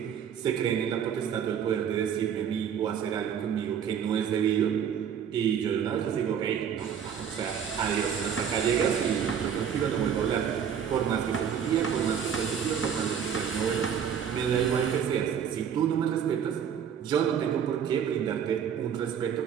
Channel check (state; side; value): quieter; left; 8.1 dB